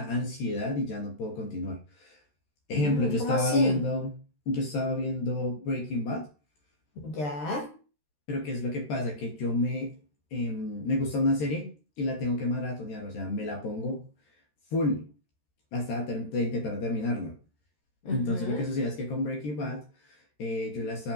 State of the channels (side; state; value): right; late; 13 ms